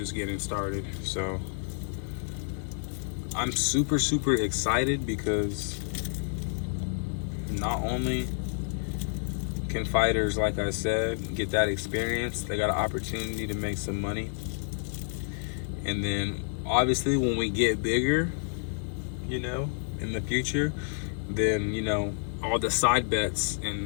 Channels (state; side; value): silent; right; digital silence